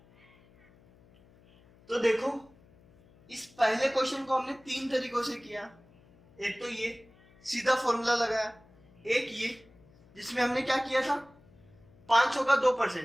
तो देखो इस पहले क्वेश्चन को हमने 3 तरीकों से किया। एक तो ये सीधा फॉर्मूला लगाया, एक ये जिसमें हमने क्या किया था? 500 का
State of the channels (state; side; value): noise; left; hum, 28 dB below the sound